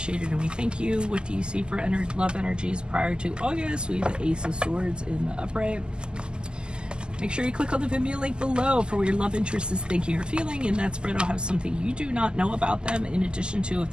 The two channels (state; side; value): late; left; 0.047 ms